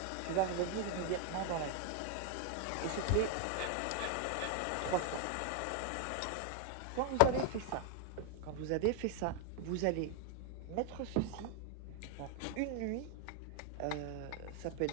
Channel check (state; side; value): different; both; correlation 0.00